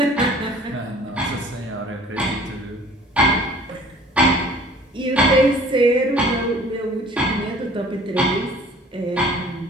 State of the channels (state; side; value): normal; both; correlation 0.51